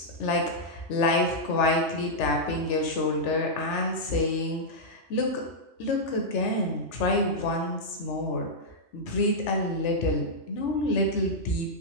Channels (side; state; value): right; late; 3.4 ms